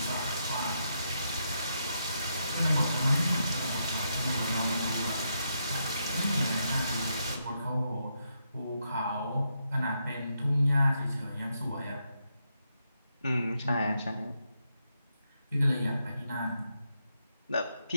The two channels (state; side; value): inverted; both; correlation -0.81